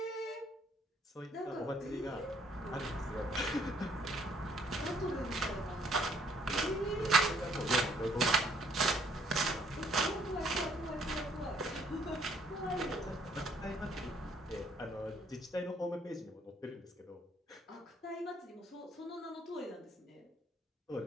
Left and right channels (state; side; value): normal; both; correlation 0.64